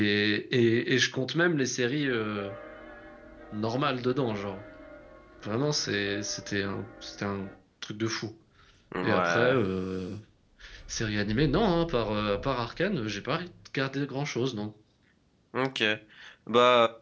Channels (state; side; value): identical; both; correlation 1.00